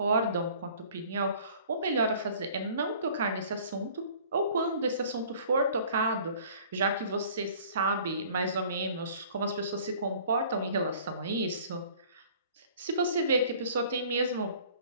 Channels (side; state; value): both; inverted; correlation -0.51